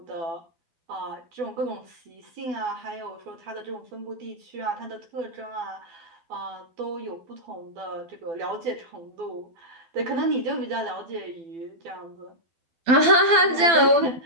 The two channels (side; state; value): left; late; 12 ms